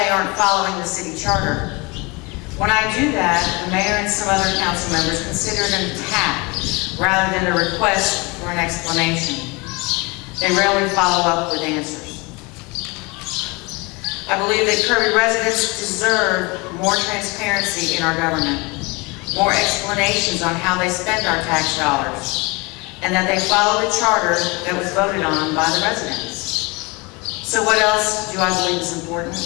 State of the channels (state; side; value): quieter; right; 26.7 dB